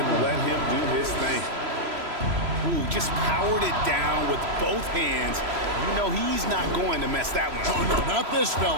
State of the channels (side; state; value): left; late; 3.0 ms